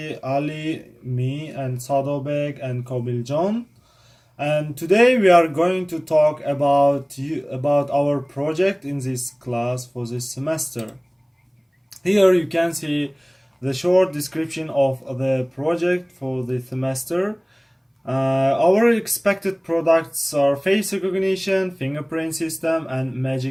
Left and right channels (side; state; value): both; identical; correlation 1.00